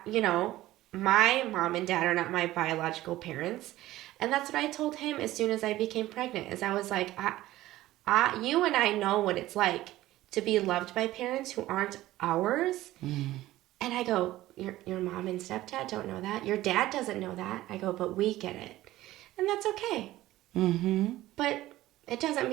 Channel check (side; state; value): left; quieter; 15.9 dB